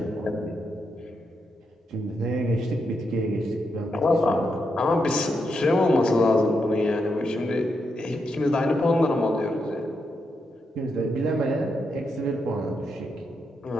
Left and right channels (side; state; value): both; normal; correlation 0.83